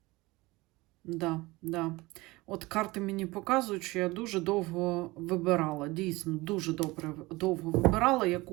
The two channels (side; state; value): left; quieter; 21.5 dB